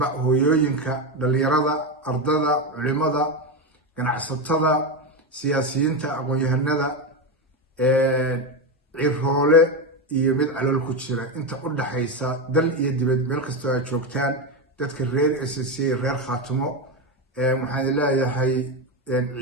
hooyooyinka dhalinyarada ardada culimada ganacsatada siyaasiyiinta aqoon-yahanada ciroole iyo mid calool ku jira inta u dhaxaysa dal iyo dibad meel kastoo ay joogtaan dadka reer SSC reer Khaatumo waxaan leeyahay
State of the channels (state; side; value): normal; both; correlation 0.13